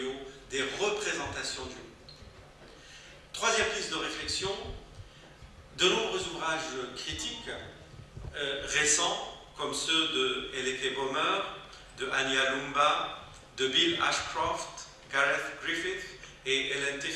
des représentations du monde. Troisième piste de réflexion, de nombreux ouvrages critiques récents, comme ceux de Eleke Bomer, de Annie Alumba, de Bill Ashcroft, Gareth Griffith et Ellen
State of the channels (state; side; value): identical; both; correlation 1.00